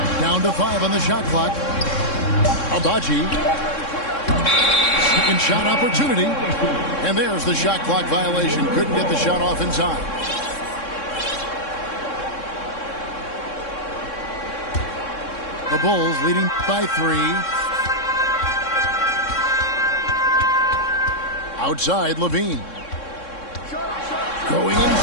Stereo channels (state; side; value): late; right; 3.6 ms